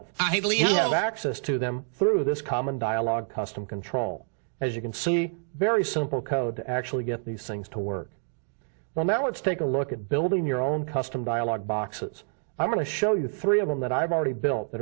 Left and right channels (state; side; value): silent; left; digital silence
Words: We have access to them through this common dialog custom control. As you can see, very simple code to actually get these things to work. Well, now let's take a look at building your own custom dialog boxes. I'm going to show you 3 of them that I've already built that